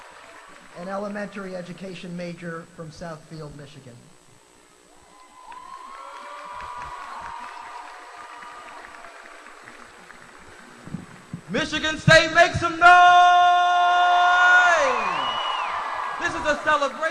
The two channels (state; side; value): identical; both; correlation 1.00